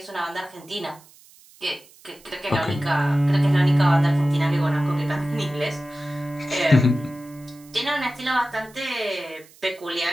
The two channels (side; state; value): right; noise; hiss, 25 dB below the sound